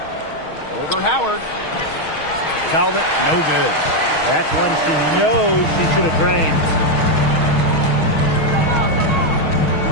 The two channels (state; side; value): late; right; 6.4 ms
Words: Over Howard. Talbot, no good. That's one she knows she should have drained.